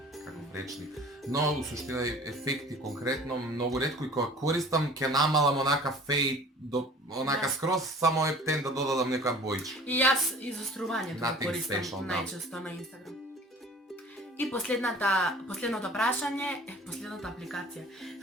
како речник. Но у суштина ефекти конкретно многу ретко и кога користам ќе намалам онака фейд до онака скроз, само е птен да додадам некоја бојчка. И јас изострувањето го Nothing користам special, да. најчесто на Инстаграм. И последното прашање, последната апликација,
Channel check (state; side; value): normal; both; correlation 0.46